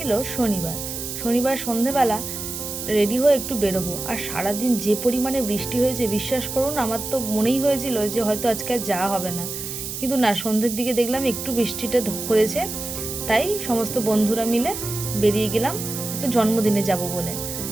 শনিবার সন্ধেবেলা রেডি হয়ে একটু বেরোবো, আর সারাদিন যে পরিমাণে বৃষ্টি হয়েছে বিশ্বাস করুন, আমার তো মনেই হয়েছিল যে হয়তো আজকে আর যাওয়া হবে না, কিন্তু না, সন্ধ্যের দিকে দেখলাম একটু বৃষ্টিটা ধরেছে, তাই সমস্ত বন্ধুরা মিলে বেরিয়ে গেলাম একটা জন্মদিনে যাব বলে।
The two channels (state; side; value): noise; right; hiss, 6 dB below the sound